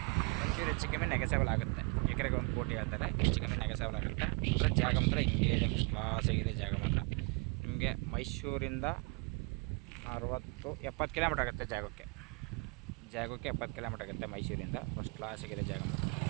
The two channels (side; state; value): left; quieter; 31.5 dB